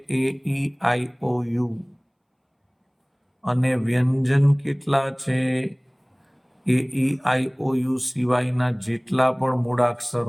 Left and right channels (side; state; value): both; identical; correlation 1.00